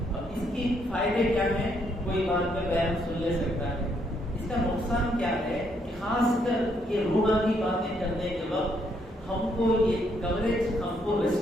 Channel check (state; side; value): normal; both; correlation 0.73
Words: اب اس کی فائدے کیا ہیں کوئی بات میں بیان سن لے سکتا ہے. اس کا نقصان کیا ہے کہ خاص کر یہ روحانی باتیں کرنے کے وقت ہم کو یہ کوریج ہم کو